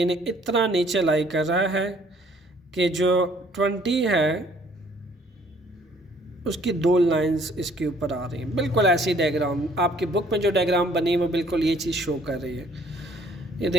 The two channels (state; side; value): normal; both; correlation 0.60